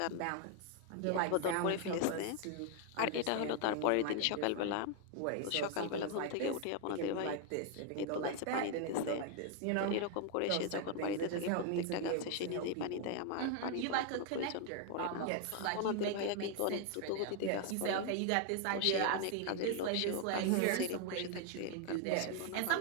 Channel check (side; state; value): both; different; correlation 0.00